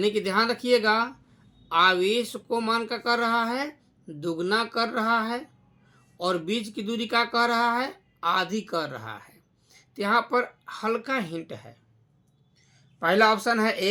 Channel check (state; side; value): identical; both; correlation 1.00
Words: कि ध्यान रखिएगा, आवेश को मान का कर रहा है, दुगना कर रहा है, और बीच की दूरी का कर रहा है, आधी कर रहा है। तो यहाँ पर हल्का हिंट है, पहला ऑप्शन है